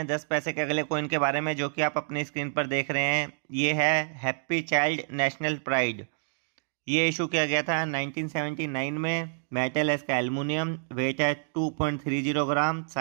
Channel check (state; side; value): silent; left; digital silence